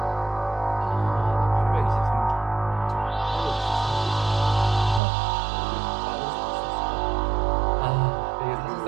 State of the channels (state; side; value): drops out; left; at 5.0 s